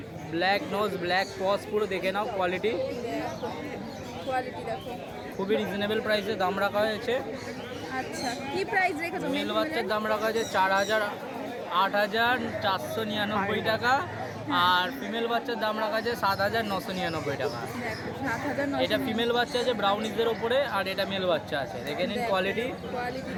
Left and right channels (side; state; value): both; identical; correlation 1.00